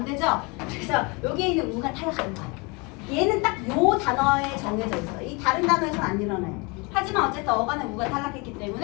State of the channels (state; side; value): quieter; right; 28.8 dB